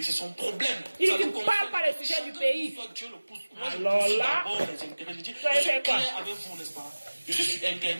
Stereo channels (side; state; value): both; inverted; correlation -1.00